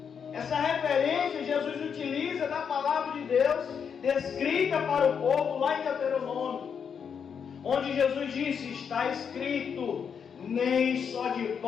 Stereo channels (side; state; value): right; quieter; 7.0 dB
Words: Essa referência Jesus utiliza da palavra de Deus descrita para o povo lá em Deuteronômio, onde Jesus disse: está escrito, nem só de